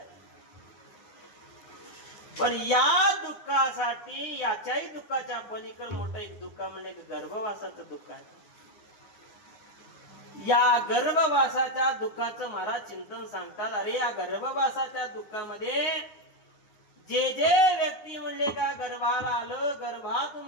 पण या दुःखासाठी याच्याही दुःखाच्या पलीकडे मोठं एक दुःख म्हणजे गर्भवासाचं दुःख आहे. या गर्भवासाच्या दुःखाचं महाराज चिंतन सांगतात. अरे या गर्भवासाच्या दुःखामध्ये जे जे व्यक्ती म्हणले का गर्भाला आलं, गर्भात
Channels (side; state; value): right; late; 10 ms